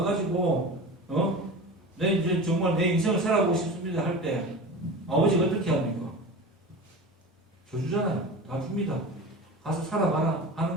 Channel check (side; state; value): both; normal; correlation 0.32